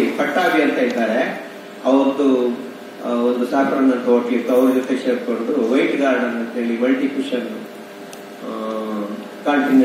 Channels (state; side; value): identical; both; correlation 1.00